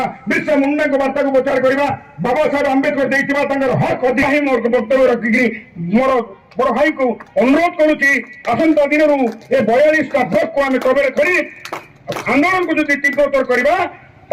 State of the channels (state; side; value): identical; both; correlation 1.00